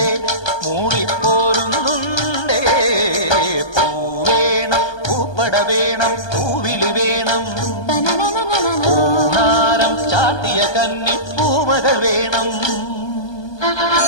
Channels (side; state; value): right; late; 1.2 ms